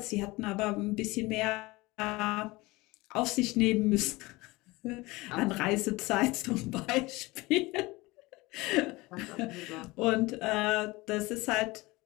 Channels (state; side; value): quieter; right; 21.9 dB